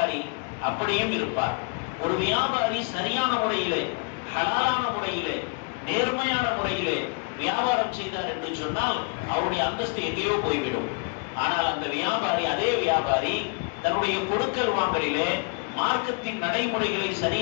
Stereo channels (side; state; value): right; quieter; 37.6 dB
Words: அப்படியும் இருப்பார். ஒரு வியாபாரி சரியான முறையிலே, ஹலாலான முறையிலே, நேர்மையான முறையிலே வியாபாரம் செய்தார் என்று சொன்னால் அவருடைய அந்தஸ்து எங்கேயோ போய்விடும். ஆனால் அந்த வியாபாரி, அதே வியாபாரி தன்னுடைய கொடுக்கல் வாங்கலிலே மார்க்கத்தின் நடைமுறைகளை